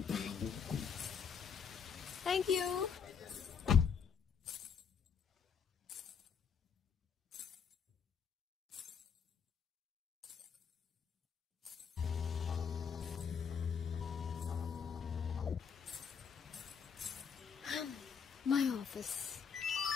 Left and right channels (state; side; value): quieter; right; 6.7 dB